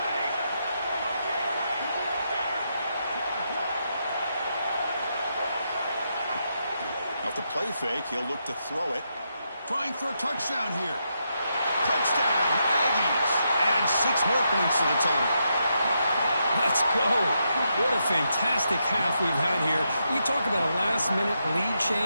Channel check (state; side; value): inverted; both; correlation -0.82